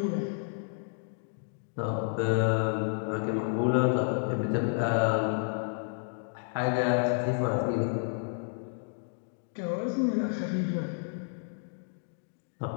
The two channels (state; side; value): silent; right; digital silence